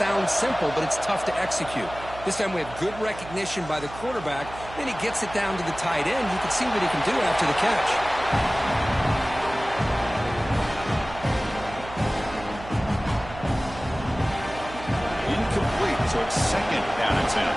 simple, but it's tough to execute. This time we have good recognition by the quarterback. Then he gets it down to the tight end. You can see what he can do after the catch. Incomplete, so it's second down and 10.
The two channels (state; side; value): noise; right; hum, 14 dB below the sound